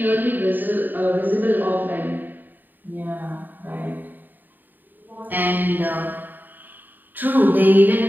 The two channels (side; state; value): left; late; 0.090 ms